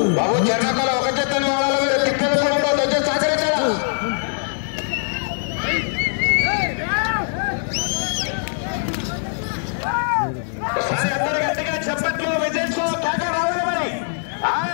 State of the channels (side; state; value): right; silent; digital silence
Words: బాబు జనకాల ఒక చెత్తని వాళ్ళ మీరు తిక్కలతో వచ్చి సహకరించారా? ఒకసారి అందరు గట్టిగా చెప్పట్లు విజయంతో కేక రావాలి. మరి